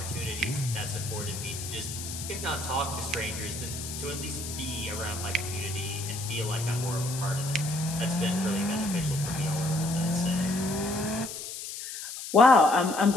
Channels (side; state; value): left; noise; hiss, 8 dB below the sound